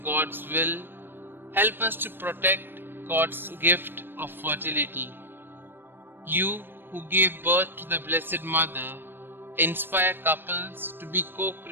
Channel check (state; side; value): late; left; 0.098 ms